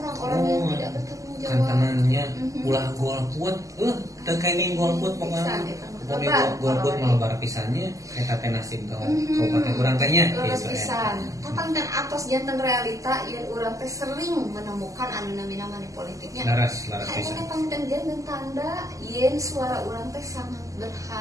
yang tidak bertanggung jawab. Kantanannya ulah golput, teu kaini golput pokoknya. Pokoknya golput malebar pisannya eta teh nasib kabupaten urang teh nya gitu pisan. Tapangkan atos janten realita yen urang teh sering menemukan anu namina money politiknya. Laras pisan. Aya pangten janten tanda yen suara urang teh sangat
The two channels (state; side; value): late; left; 0.16 ms